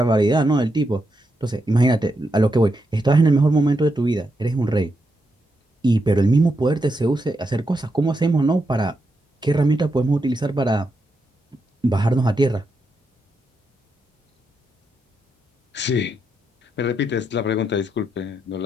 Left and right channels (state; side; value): normal; both; correlation 0.83